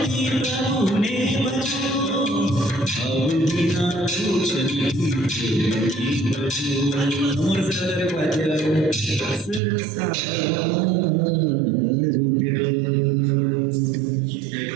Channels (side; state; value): left; drops out; at 9.6 s